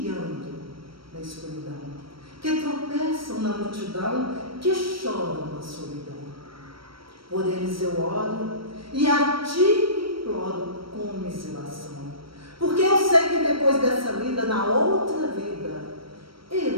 na escuridão, que tropeçam na multidão, que choram na solidão. Por eles eu oro e a ti imploro com commiseração, porque eu sei que depois dessa vida, na outra vida,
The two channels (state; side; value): late; left; 0.75 ms